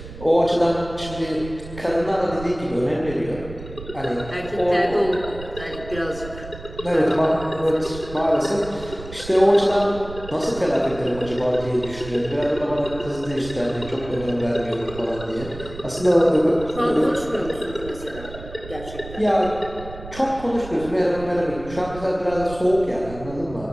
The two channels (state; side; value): noise; right; rumble, 14 dB below the sound